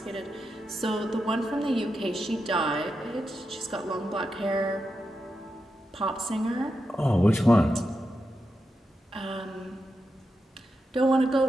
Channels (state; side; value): normal; both; correlation 0.87